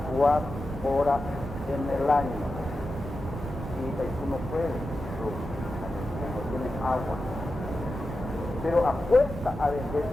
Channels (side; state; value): both; normal; correlation 0.91